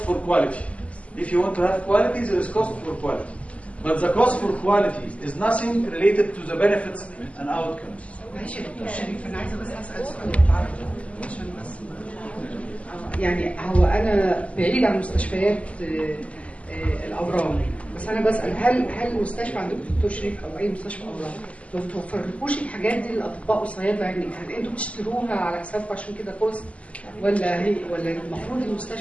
for quality. If you want to have quality, there is cost for quality. But the cost for quality is nothing related to the benefits and outcomes. ماشي يا دكتور شريف، انا عايزه بس اسال سؤال بالعربي عشان بس يعني هو انا بعيد عن مستشفيات الاورام، بس انا بسال هل المستشفى عندكم دكتور شريف او اي مستشفى اورام ما بتوفرلكوش الحاجات دي للاطباء والصيادله؟ يعني هل انتوا بتشتروها على حسابكم عشان كده كوست، ولا المفروض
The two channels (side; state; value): right; late; 0.065 ms